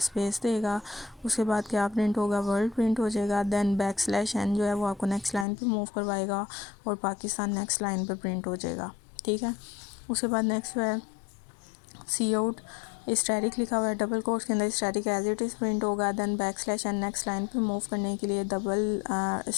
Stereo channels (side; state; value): right; drops out; at 5.5 s